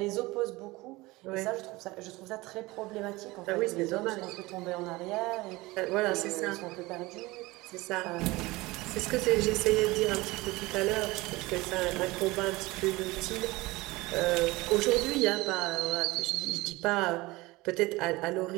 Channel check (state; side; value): quieter; left; 21.2 dB